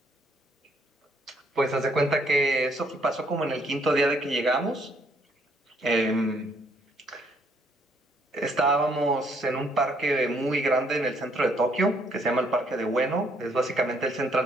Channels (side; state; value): both; normal; correlation 0.67